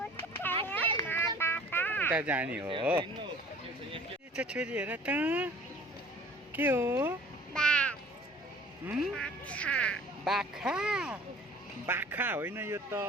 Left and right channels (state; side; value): normal; both; correlation 0.48